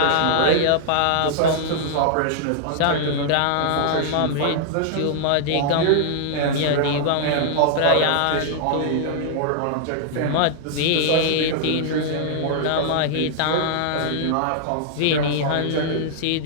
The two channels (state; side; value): different; both; correlation -0.01